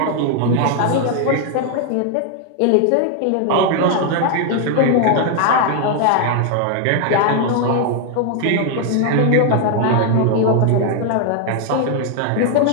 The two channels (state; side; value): different; both; correlation 0.00